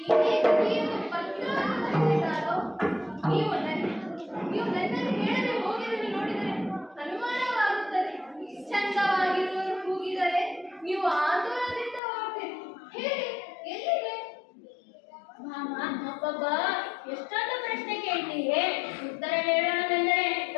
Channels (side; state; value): right; drops out; at 12.0 s